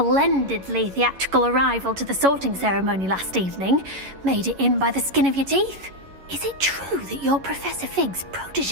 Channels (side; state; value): left; late; 11 ms